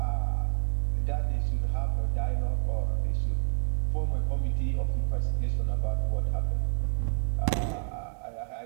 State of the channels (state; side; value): silent; left; digital silence